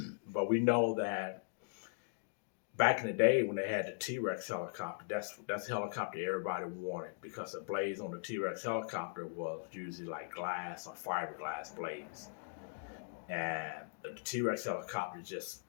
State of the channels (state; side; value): silent; right; digital silence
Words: but we know that back in the day when they had the T-Rex helicopter, that's the helicopter everybody wanted because the blades on the T-Rex helicopter was usually like glass or fiberglass blades. And the T-Rex helicopter just